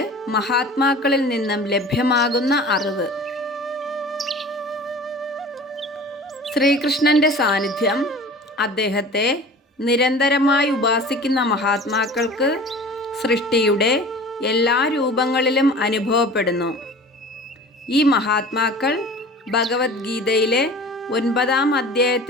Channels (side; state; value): both; normal; correlation 0.41